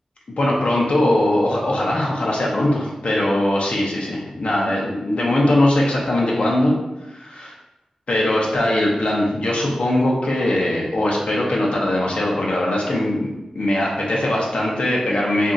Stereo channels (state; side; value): normal; both; correlation 0.92